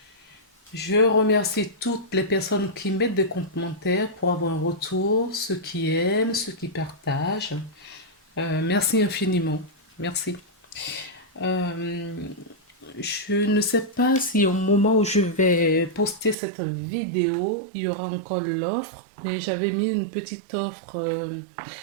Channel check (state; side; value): drops out; left; at 16.4 s